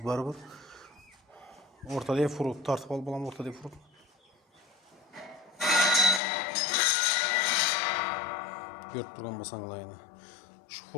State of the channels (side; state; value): right; drops out; at 6.2 s